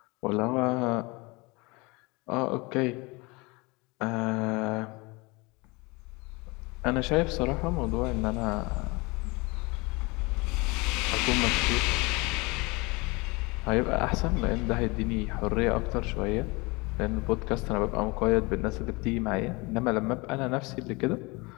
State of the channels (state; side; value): quieter; right; 26.0 dB